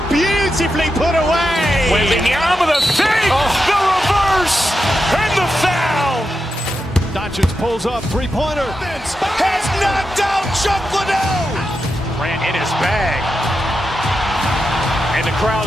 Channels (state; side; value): normal; both; correlation 0.88